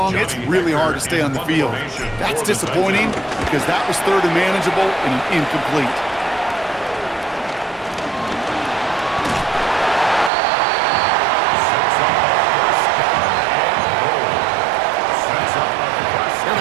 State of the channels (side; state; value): left; drops out; at 10.3 s